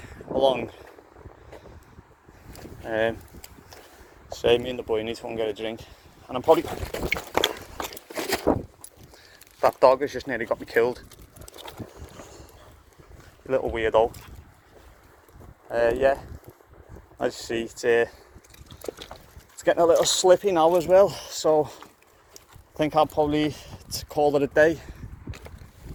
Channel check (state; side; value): identical; both; correlation 1.00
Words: along. Say me and the boy need to go and get a drink. And I'm probably... That dog has just nearly got me killed. A little weirdo. Yeah, as you see, it's getting a little slippy now as well, so I think I'll probably call it a day.